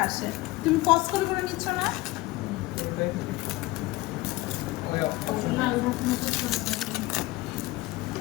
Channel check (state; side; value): quieter; right; 19.6 dB